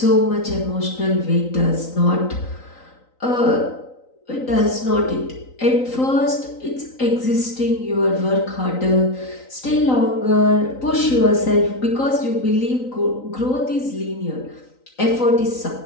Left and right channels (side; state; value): right; late; 3.9 ms